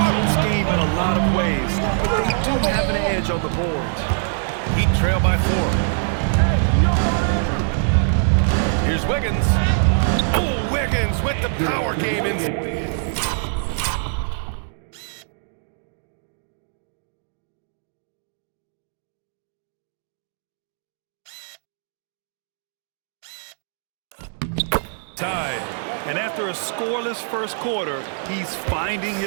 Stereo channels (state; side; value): silent; left; digital silence